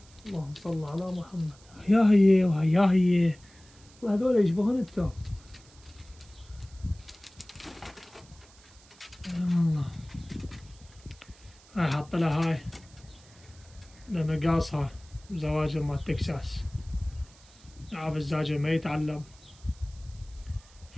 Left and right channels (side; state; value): right; noise; hiss, 25 dB below the sound